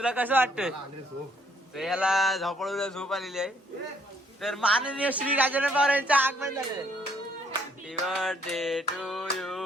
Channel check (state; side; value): normal; both; correlation 0.66